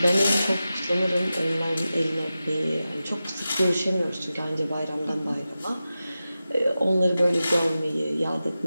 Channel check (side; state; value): both; inverted; correlation -0.93